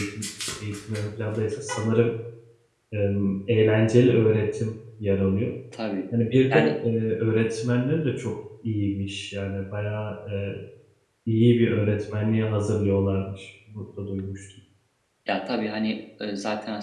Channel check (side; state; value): both; identical; correlation 1.00